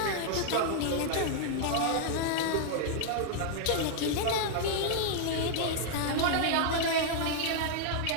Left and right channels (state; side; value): different; both; correlation -0.01